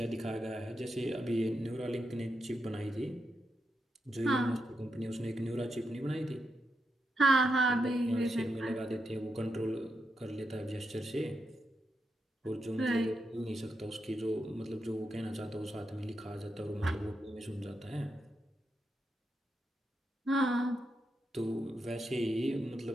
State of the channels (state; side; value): normal; both; correlation 0.85